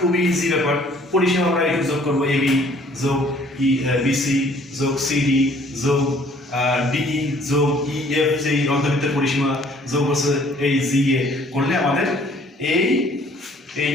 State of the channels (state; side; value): normal; both; correlation 0.58